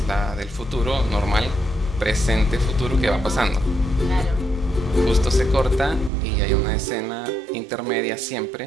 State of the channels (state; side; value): drops out; left; at 6.1 s